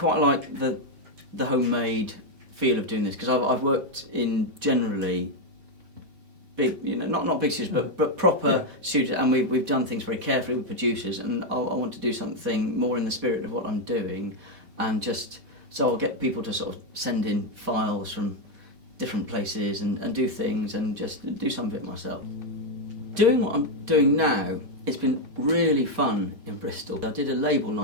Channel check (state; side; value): late; left; 5.1 ms